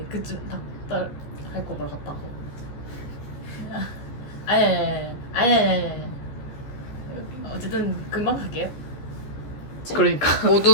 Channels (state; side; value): late; right; 15 ms